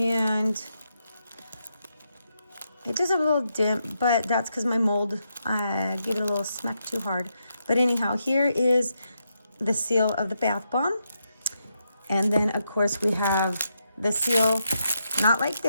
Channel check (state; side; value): inverted; both; correlation -0.82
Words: it does have a little dent, but that's because my mold, I gave it a little smack too hard. But anyhow, here is the seal of the bath bomb. And then, of course, we have the seal, not like